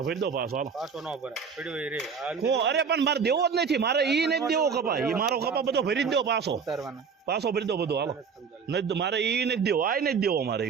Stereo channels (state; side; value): quieter; left; 6.1 dB